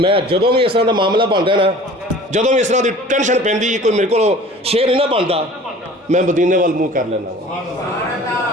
जदों भी इस तरह का मामला बनता ना, जदों भी इस तरह की टेंशन पैंदी कोई मेरे को शेर नहीं ना बनता, मैं मदीने वाल मूँह कर लेना।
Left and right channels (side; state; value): both; normal; correlation 0.45